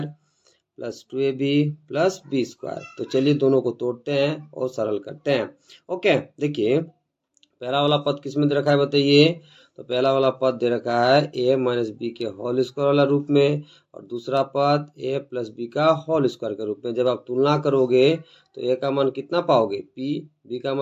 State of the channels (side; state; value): both; identical; correlation 1.00